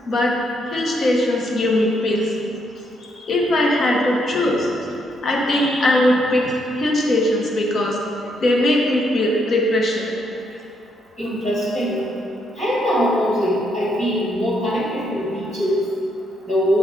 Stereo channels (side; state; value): both; normal; correlation 0.75